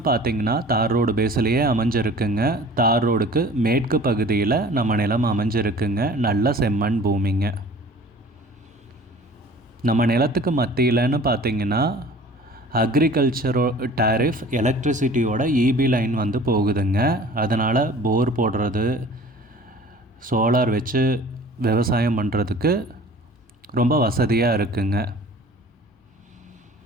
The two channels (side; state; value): both; normal; correlation 0.46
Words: பார்த்திங்கன்னா தார் ரோடு பேஸ்லேயே அமைஞ்சிருக்குங்க. தார் ரோடுக்கு மேற்கு பகுதியில் நம்ம நிலம் அமைஞ்சிருக்குங்க. நல்ல செம்மண் பூமிங்க. நம்ம நிலத்துக்கு மத்தியில்னு பார்த்திங்கன்னா அக்ரிகல்ச்சரோ டேரிஃப் எலக்ட்ரிசிட்டியோட இபி லைன் வந்து போகுதுங்க. அதனால் போர் போடுறது, சோலார் வச்சு விவசாயம் பண்ணுறதுக்கு ரொம்ப வசதியாக இருக்குங்க.